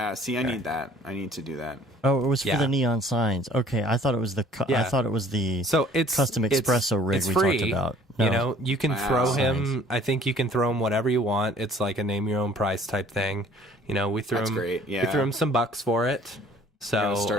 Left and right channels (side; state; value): both; normal; correlation 0.55